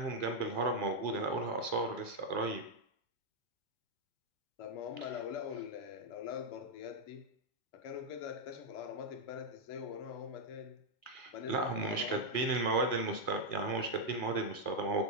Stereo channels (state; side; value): late; right; 1.8 ms